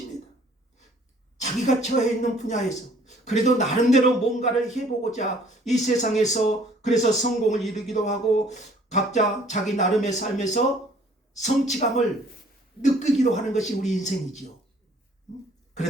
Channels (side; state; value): both; normal; correlation 0.57